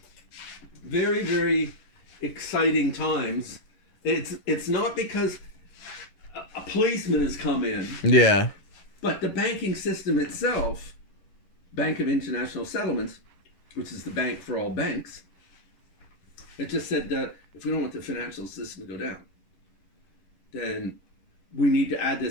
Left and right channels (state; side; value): late; right; 10 ms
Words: very, very exciting times. It's not because a policeman has come in, Yeah. but the banking system itself, Bank of International Settlements, which is the bank for all banks, it just said that if we don't want the financial system to go down, then we need to add